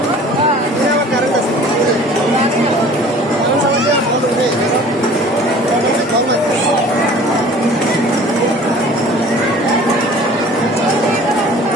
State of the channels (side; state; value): both; normal; correlation 0.47